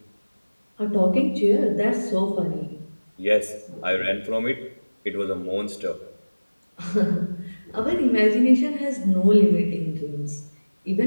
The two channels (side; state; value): both; inverted; correlation -1.00